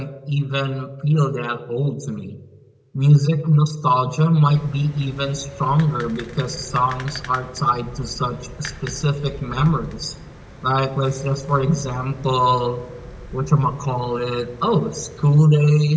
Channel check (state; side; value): identical; both; correlation 1.00